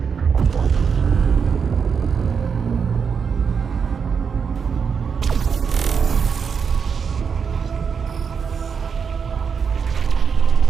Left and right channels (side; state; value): left; quieter; 6.3 dB